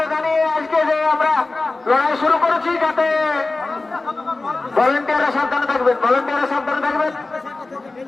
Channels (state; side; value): quieter; right; 3.3 dB